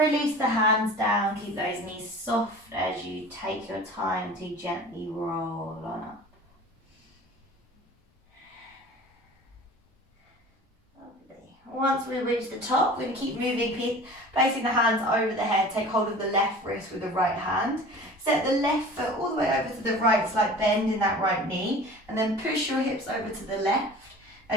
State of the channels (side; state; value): both; normal; correlation 0.41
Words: the hands down, keep those knees soft as you take your time to gently roll on up. Once we reach the top, we're going to keep moving, placing the hands over the head. Take hold of the left wrist with the right hand. Set the left foot all the way over to the right, slight bend in that right knee. And then push your hips over to the left